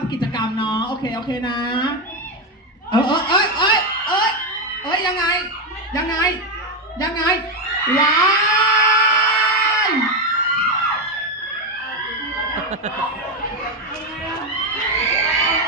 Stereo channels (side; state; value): both; normal; correlation 0.08